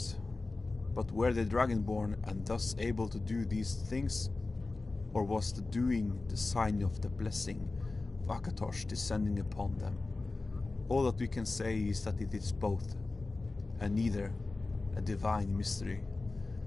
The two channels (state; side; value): quieter; right; 3.4 dB